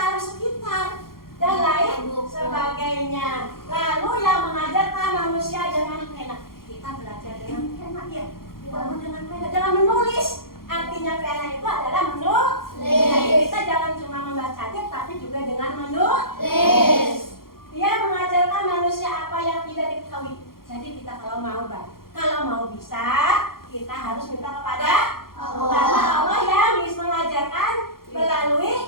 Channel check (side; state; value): right; late; 0.92 ms